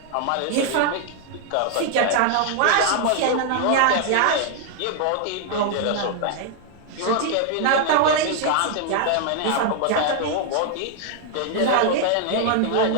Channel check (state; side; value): different; both; correlation 0.00